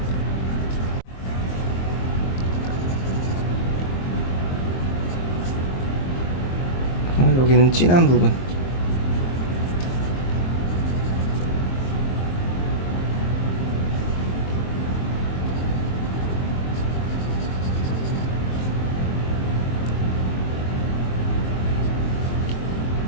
여기는 진한 부분.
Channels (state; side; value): late; right; 23 ms